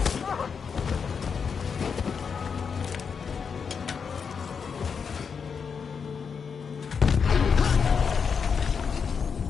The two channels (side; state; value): right; quieter; 6.1 dB